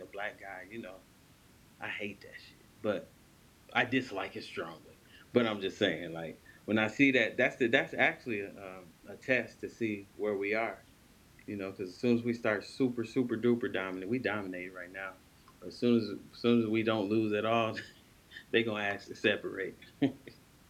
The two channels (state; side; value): identical; both; correlation 1.00